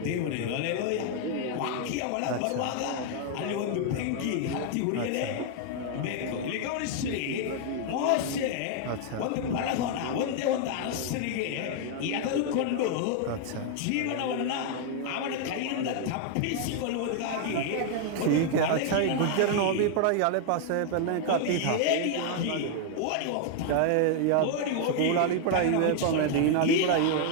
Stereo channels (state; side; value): different; both; correlation 0.00